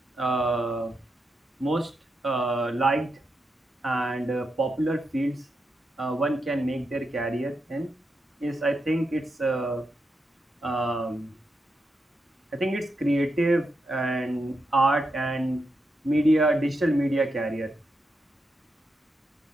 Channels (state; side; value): normal; both; correlation 0.85